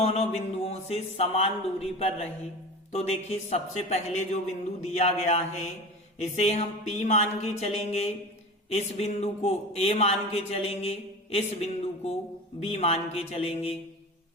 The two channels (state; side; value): normal; both; correlation 0.32